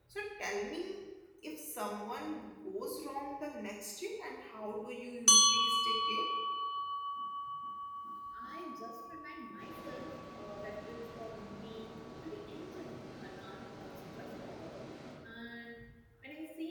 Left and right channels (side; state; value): both; identical; correlation 1.00